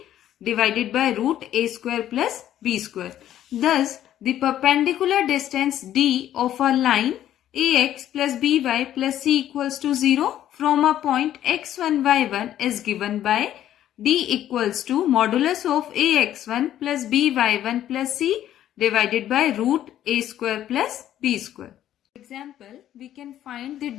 divided by root A square plus B square. Thus, the perpendicular distance D of a line AX plus BY plus C equals to 0 from a point x1, y1 is given by D equals to modulus of AX1 plus BY1 plus C divided by root A square plus B square. For example, we can find the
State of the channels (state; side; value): quieter; right; 11.8 dB